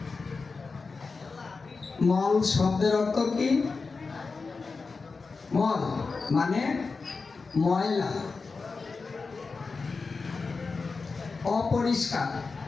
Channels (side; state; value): right; quieter; 4.4 dB